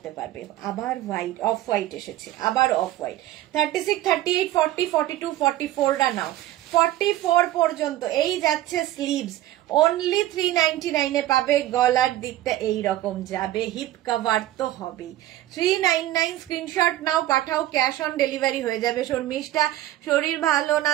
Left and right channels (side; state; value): left; quieter; 14.5 dB